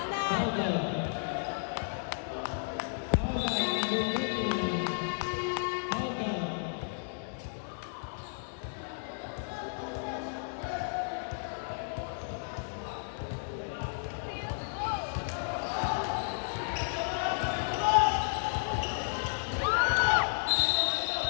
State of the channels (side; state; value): right; silent; digital silence